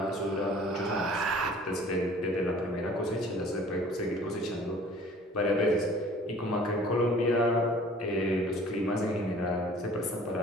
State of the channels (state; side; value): normal; both; correlation 0.50